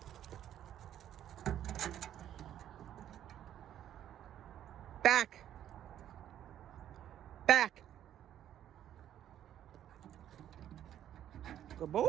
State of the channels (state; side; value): quieter; left; 11.0 dB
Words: Back. Back. Good boy.